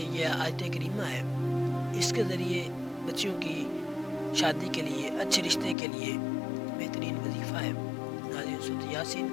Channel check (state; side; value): drops out; right; at 5.8 s